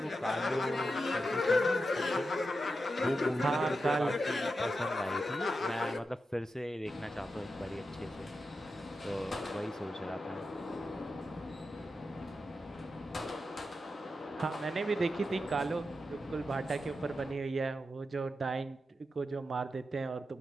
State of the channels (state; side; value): normal; both; correlation 0.89